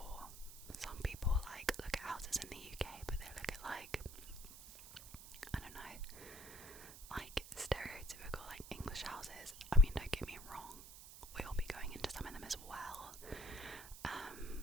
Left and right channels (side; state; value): right; noise; hiss, 14 dB below the sound